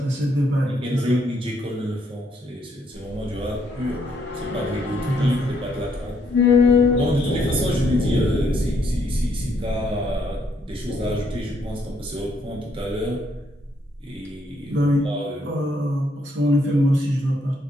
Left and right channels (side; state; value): both; normal; correlation 0.72